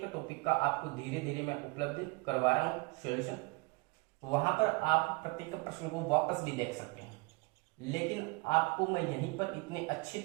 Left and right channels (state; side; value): quieter; left; 27.6 dB